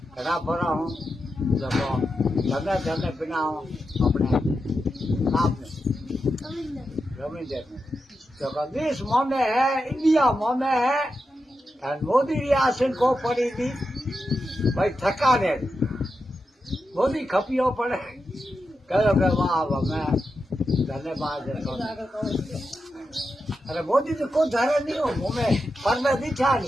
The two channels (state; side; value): normal; both; correlation 0.88